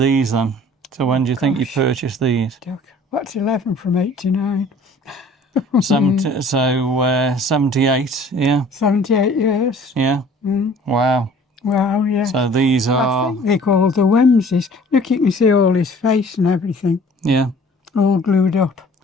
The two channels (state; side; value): normal; both; correlation 0.51